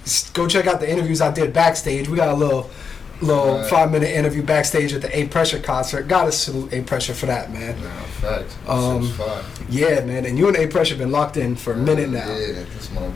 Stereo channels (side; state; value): right; quieter; 5.9 dB